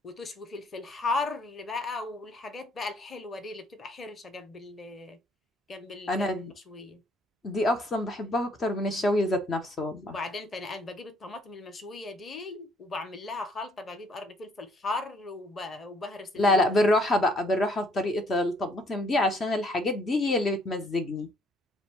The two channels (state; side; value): normal; both; correlation 0.65